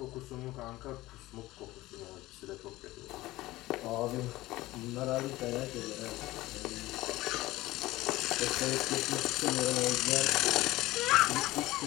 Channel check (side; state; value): right; quieter; 18.0 dB